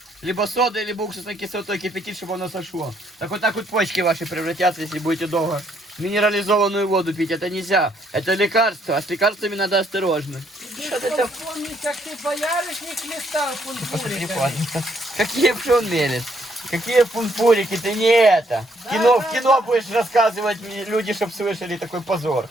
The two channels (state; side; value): normal; both; correlation 0.70